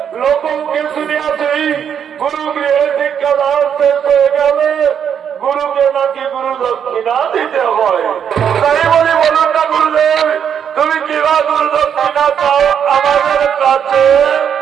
লোককে শুনিয়াছি গুরু গৃহে শিক্ষাদান শেষ হয়ে গেলে গুরুকে নাকি গুরু দক্ষিণা দিতে হয়। তাই বলি বলুন না গুরুদেব, তুমি কিবা গুরু দক্ষিণা চাও আমাদের কাছে?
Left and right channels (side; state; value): left; quieter; 8.2 dB